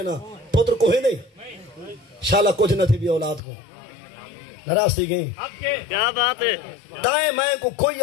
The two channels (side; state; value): right; drops out; at 3.4 s